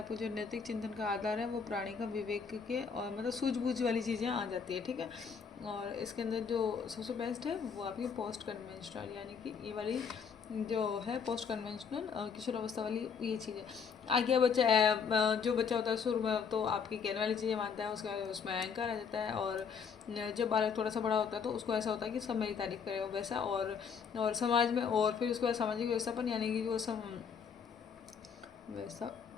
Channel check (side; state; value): right; quieter; 6.3 dB